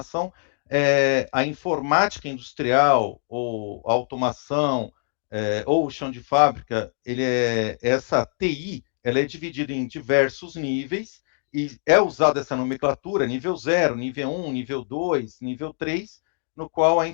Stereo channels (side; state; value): right; silent; digital silence